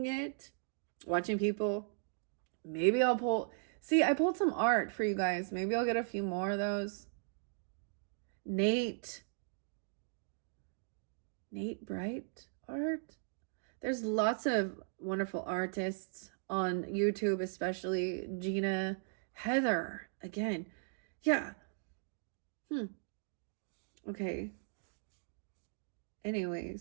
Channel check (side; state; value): left; silent; digital silence